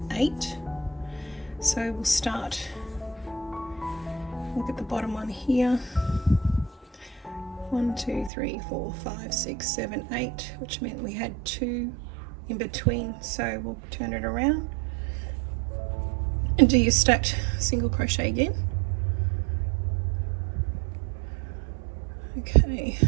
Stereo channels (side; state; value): left; drops out; at 8.3 s